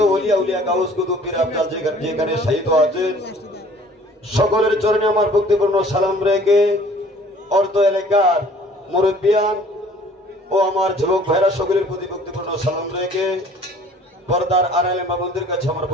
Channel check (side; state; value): both; normal; correlation 0.52